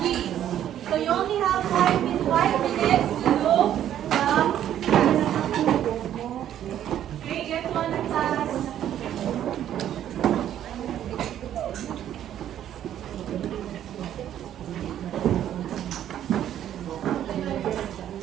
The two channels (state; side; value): quieter; left; 11.0 dB